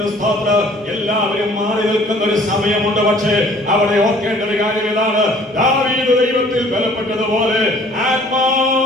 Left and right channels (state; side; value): normal; both; correlation 0.54